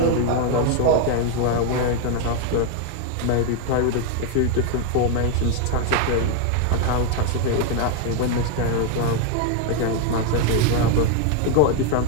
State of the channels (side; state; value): both; different; correlation 0.01